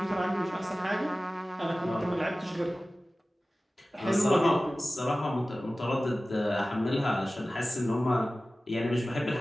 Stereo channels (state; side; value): normal; both; correlation 0.97